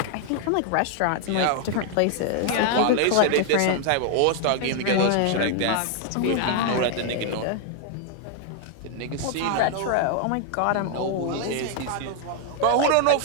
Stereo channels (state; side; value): different; both; correlation 0.00